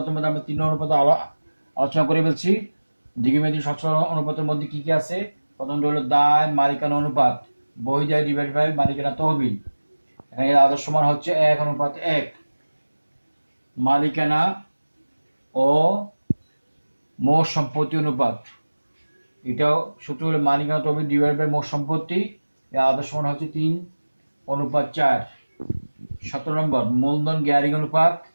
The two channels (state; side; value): inverted; both; correlation -1.00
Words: মধ্যে আমরা 3 অনুপাত আলোচনা করে ফেলছি। দীর্ঘমেয়াদী সচ্ছলতা অনুপাতের মধ্যে কি কি আছে? প্রথমটা হলো দায় মালিকানা অনুপাত, বহিদায় ডিভাইড বাই মালিকানা তহবিল। এখানে এর আদর্শ মান হচ্ছে 1:1। মালিকানা ও মোট সম্পত্তি অনুপাত, এটাও সূত্র হলো মালিকানা তহবিল ডিভাইড বাই মোট সম্পত্তি। এর আদর্শ মান হচ্ছে 3:4। 17 নম্বর, মূলধন গ্যারিং অনুপাত,